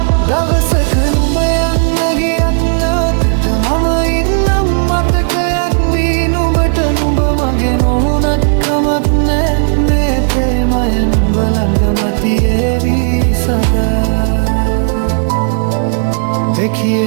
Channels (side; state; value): left; silent; digital silence